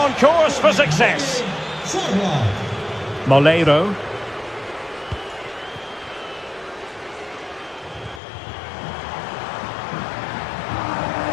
course for success. Molero.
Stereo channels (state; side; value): drops out; right; at 8.2 s